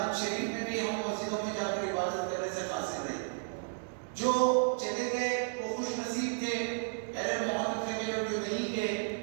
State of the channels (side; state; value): left; silent; digital silence